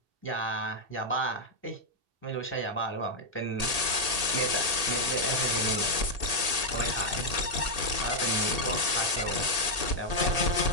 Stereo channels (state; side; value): late; left; 2.7 ms